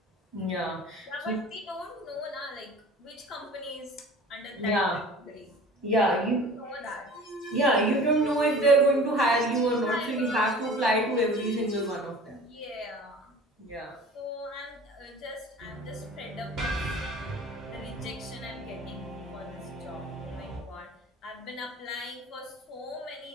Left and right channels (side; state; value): both; normal; correlation 0.43